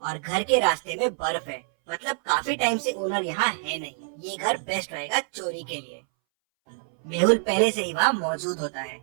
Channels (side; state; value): left; silent; 61 dB below the other